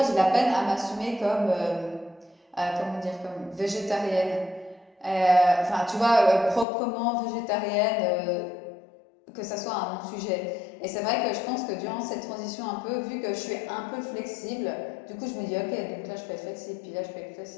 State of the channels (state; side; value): drops out; right; at 6.7 s